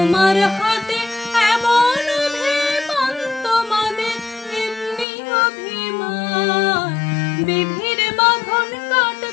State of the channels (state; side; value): drops out; right; at 5.1 s